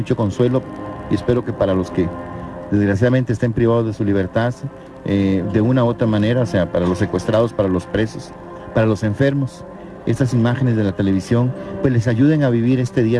consuelo y espero que para los que desgraciadamente estén privados de su libertad, de una u otra manera, o sea, para los secuestrados, para los presos, para los enfermos, estas imágenes de la televisión pues les ayuden a vivir este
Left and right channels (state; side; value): identical; both; correlation 1.00